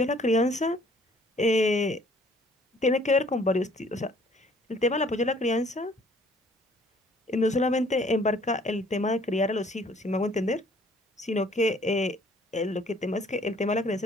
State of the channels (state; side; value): normal; both; correlation 0.58